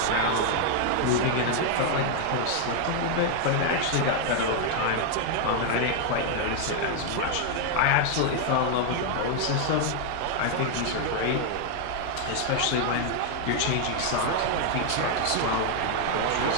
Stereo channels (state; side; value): different; both; correlation 0.00